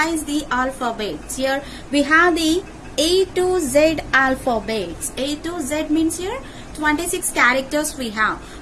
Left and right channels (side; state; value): both; identical; correlation 1.00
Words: the alphabets. Here we have the A to Z alphabets. A to Z means here 26 characters we have.